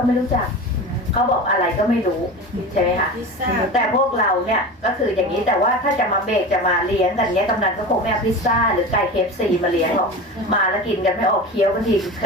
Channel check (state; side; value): normal; both; correlation 0.30